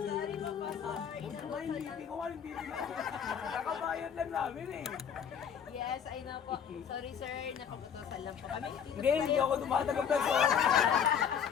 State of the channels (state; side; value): quieter; right; 7.8 dB